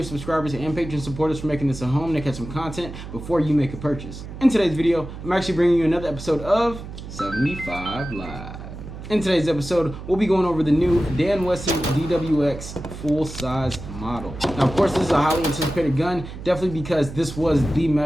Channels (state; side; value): noise; right; hum, 11 dB below the sound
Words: subscribers, and Patreon supporters for making this a home to catch some content before you make a purchase. In today's video, I'm actually bringing you another episode of 75 Live. In today's episode, we'll be going over the new Wesson Dwx full-size model. Now, of course, this is a highly anticipated gun, definitely because this was the